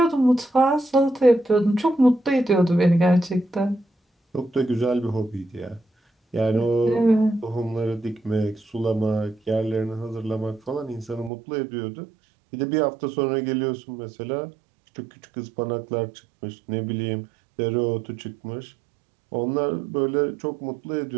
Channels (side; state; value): left; drops out; at 11.3 s